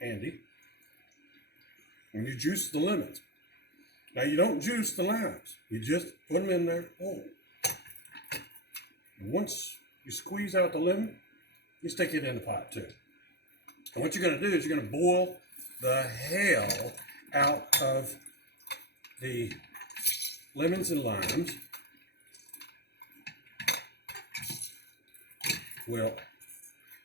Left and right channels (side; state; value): right; late; 0.48 ms